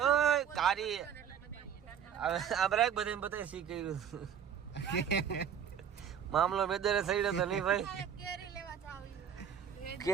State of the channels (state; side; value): quieter; left; 8.5 dB